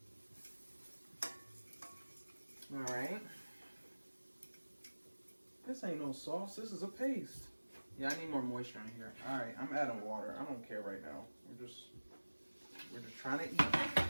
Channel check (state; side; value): inverted; both; correlation -1.00